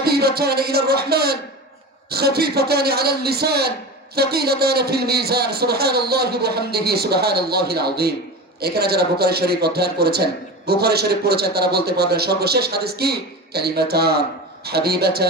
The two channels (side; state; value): both; normal; correlation 0.28